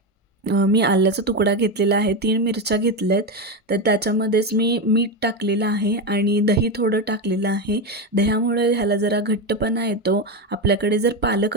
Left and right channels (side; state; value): both; normal; correlation 0.13